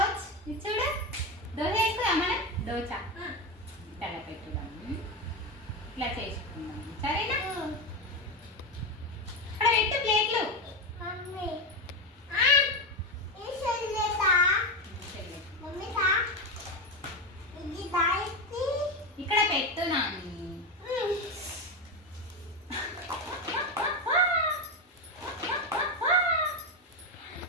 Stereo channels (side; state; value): both; normal; correlation 0.13